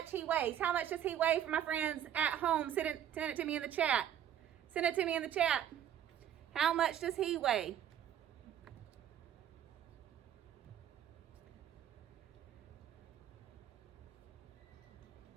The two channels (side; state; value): left; quieter; 10.2 dB